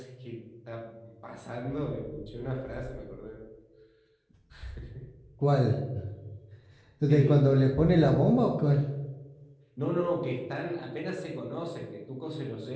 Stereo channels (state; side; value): identical; both; correlation 1.00